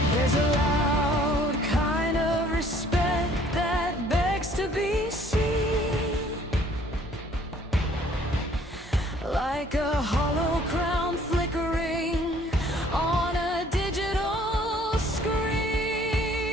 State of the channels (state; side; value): normal; both; correlation 0.58